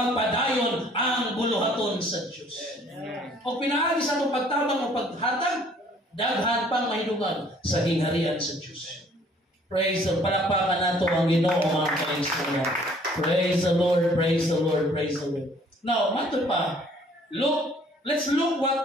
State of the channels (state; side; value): normal; both; correlation 0.58